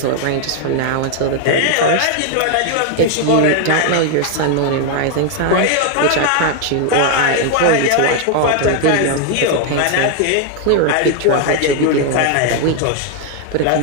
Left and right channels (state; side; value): different; both; correlation 0.00